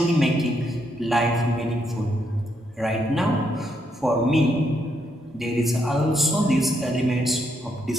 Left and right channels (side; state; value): both; normal; correlation 0.77